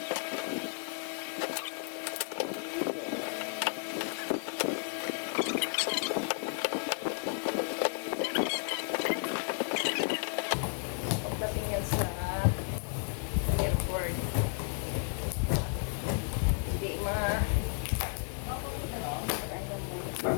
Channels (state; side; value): silent; right; 56 dB below the other